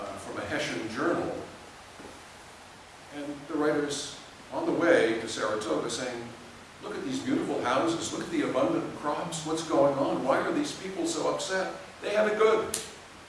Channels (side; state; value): both; identical; correlation 1.00